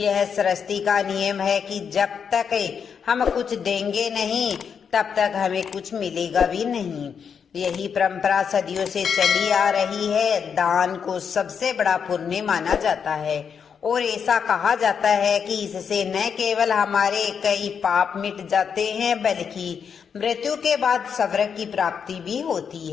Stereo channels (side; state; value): right; quieter; 6.9 dB